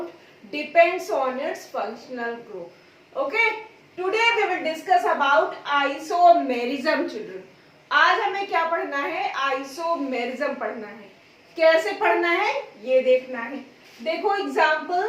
depends on its functional group. Okay, today we will discuss about isomerism children. आज हमें क्या पढ़ना है? आइसोमेरिज्म पढ़ना है. कैसे पढ़ना है ये देखना है. देखो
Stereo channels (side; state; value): both; identical; correlation 1.00